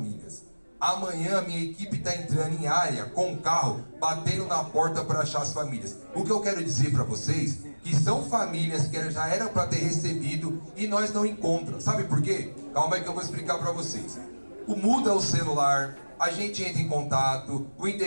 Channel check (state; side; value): inverted; both; correlation -1.00